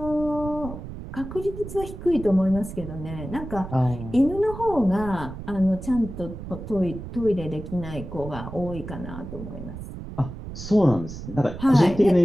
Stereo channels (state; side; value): noise; right; rumble, 10 dB below the sound